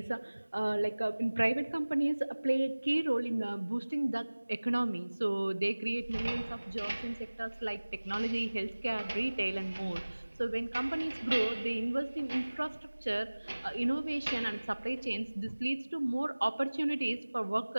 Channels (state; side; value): inverted; both; correlation -1.00